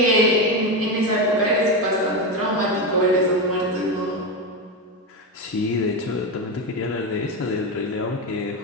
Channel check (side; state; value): both; normal; correlation 0.14